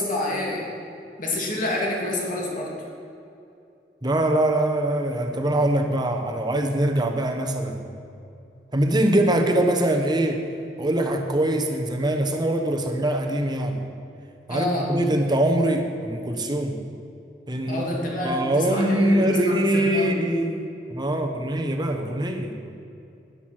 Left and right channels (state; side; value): normal; both; correlation 0.63